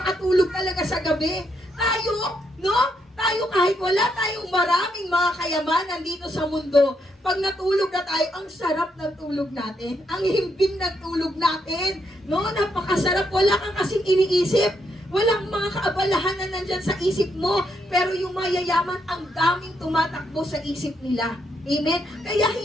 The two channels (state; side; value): normal; both; correlation 0.77